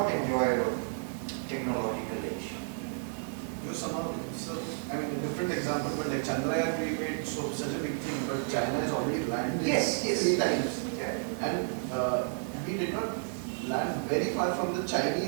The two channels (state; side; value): silent; left; digital silence